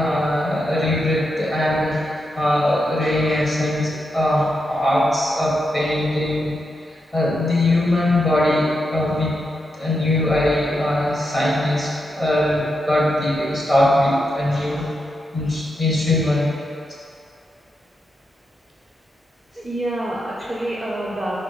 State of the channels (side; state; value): both; normal; correlation 0.85